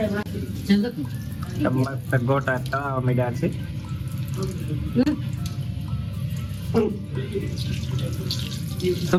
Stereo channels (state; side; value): identical; both; correlation 1.00